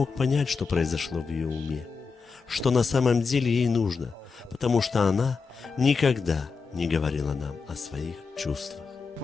понять, что произошло в ее уме, что на самом деле ей нужно, потому что она никогда не говорила нам о своих чувствах.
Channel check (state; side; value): quieter; right; 5.0 dB